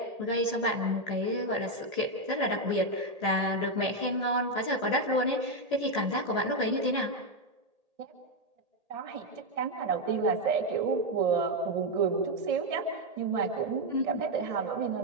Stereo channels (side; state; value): left; late; 1.8 ms